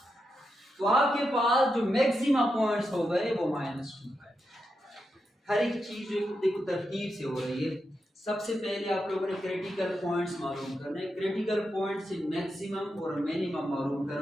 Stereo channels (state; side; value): normal; both; correlation 0.86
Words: तो आपके पास जो मैक्सिमा पॉइंट्स हो गए वो -2 है। हर एक चीज देखो तरतीब से हो रही है। सबसे पहले आप लोगों ने क्रिटिकल पॉइंट्स मालूम करने, क्रिटिकल पॉइंट से मैक्सिमम और मिनिमम मालूम